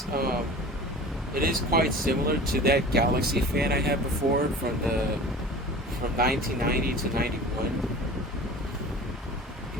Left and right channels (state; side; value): normal; both; correlation 0.39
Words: it is quite similar to that Galaxy fan I had before from 1990 to 91.